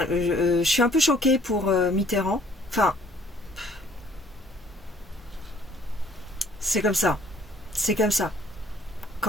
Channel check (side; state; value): both; normal; correlation 0.60